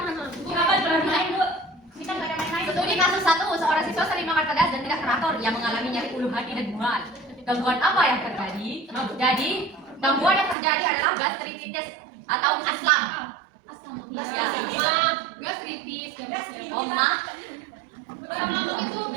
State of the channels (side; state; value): left; drops out; at 10.6 s